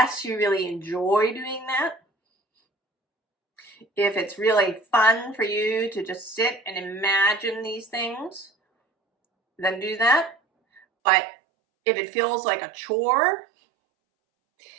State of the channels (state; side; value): drops out; left; at 10.8 s